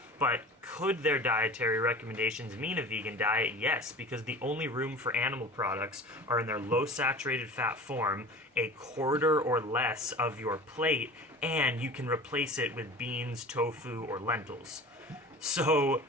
But could their dietary recommendations mean a vegan diet? Yes, because the only room for animal products are in their low saturated fat form, a quarter or less of your plate, and you can replace it with beans, tofu, or lentils. So,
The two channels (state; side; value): normal; both; correlation 0.38